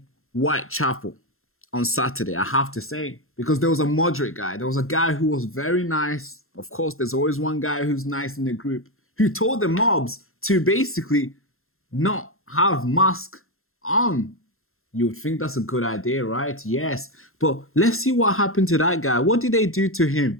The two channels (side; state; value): right; late; 0.61 ms